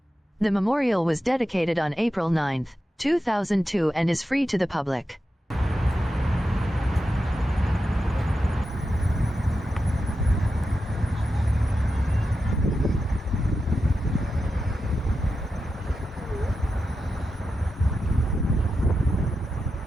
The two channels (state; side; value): normal; both; correlation 0.90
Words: The memorial was dedicated on April 9, 2002 and is free to the public.